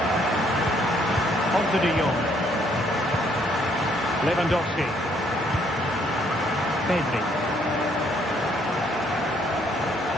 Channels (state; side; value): normal; both; correlation 0.67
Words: On to De Jong. Lewandowski. Pedri.